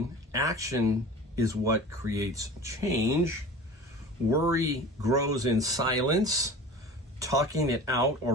Action is what creates change. Worry grows in silence. Talking it out or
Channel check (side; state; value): both; normal; correlation 0.38